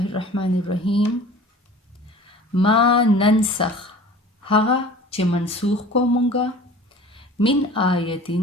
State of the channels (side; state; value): both; normal; correlation 0.43